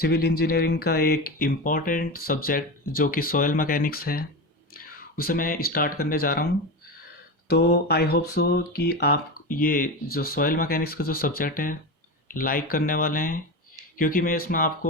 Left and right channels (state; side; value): normal; both; correlation 0.21